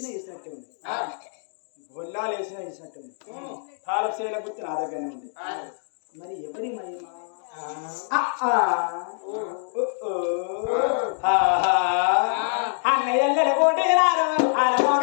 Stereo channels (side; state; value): right; silent; digital silence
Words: వేసినట్టే ఉంది గొల్లాలు వేసినట్టే ఉంది తాలపు చేల గుర్తు నా దగ్గరనే ఉంది మరి ఎవరి మహిమ అన్నయ్యల కూడినారు